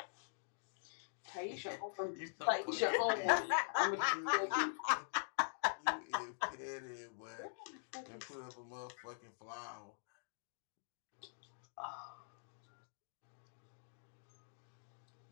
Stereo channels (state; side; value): silent; right; digital silence